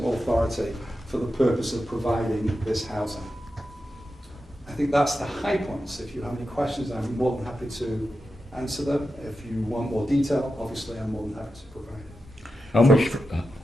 Authority for the purpose of providing this housing. I think that's the high points. If you have any questions, I'm more than happy to answer them. If you want more detail, obviously I'm more than happy to provide it. How much,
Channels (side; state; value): both; normal; correlation 0.90